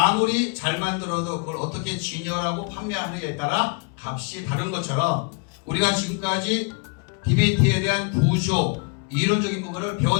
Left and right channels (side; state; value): right; quieter; 34.4 dB